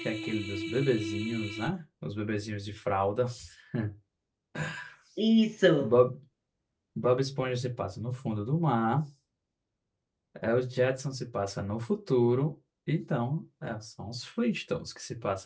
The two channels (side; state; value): both; identical; correlation 1.00